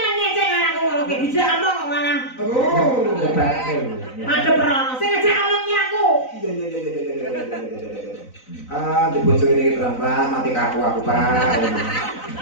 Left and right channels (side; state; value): right; late; 3.9 ms